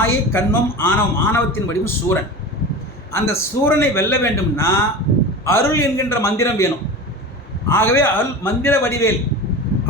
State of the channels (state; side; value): normal; both; correlation 0.30